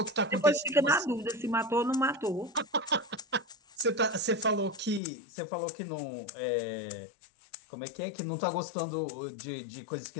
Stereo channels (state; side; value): drops out; right; at 5.0 s